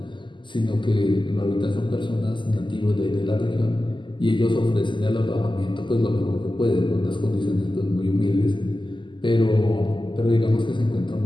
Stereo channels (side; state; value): right; late; 0.24 ms